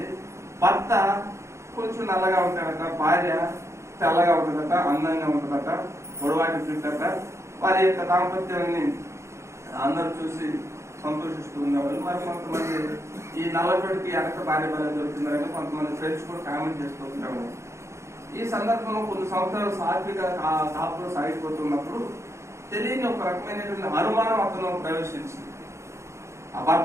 భర్త కొంచెం నల్లగా ఉంటాడట, భార్య తెల్లగా ఉంటుందట, అందంగా ఉంటుందట, పొడవాటి చుట్టట. వారి యొక్క దాంపత్యాన్ని అందరూ చూసి సంతోషిస్తూ ఉండేవాళ్ళు. మరి కొంతమంది ఈ నల్లబడికి వెనక భార్య భార్య దొరుకుతున్నారని కొంతమంది ఫ్రెండ్స్ కూడా కామెంట్ చేస్తూ ఉంటారు. ఈ సందర్భంలో కొన్ని సంవత్సరాలు సాత్విక కాపులో సాగిపోతున్నప్పుడు తెలియని ఒక రకమైనటువంటి అనుమానం అతను ప్రవేశించింది ఆ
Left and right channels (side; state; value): left; late; 0.14 ms